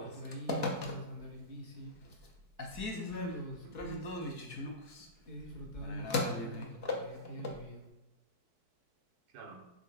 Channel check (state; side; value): late; left; 4.6 ms